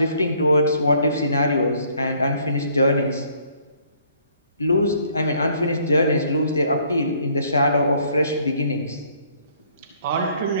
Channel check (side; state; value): both; inverted; correlation -0.62